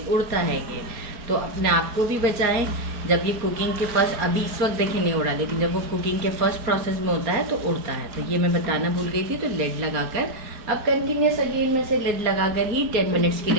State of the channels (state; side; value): late; left; 4.2 ms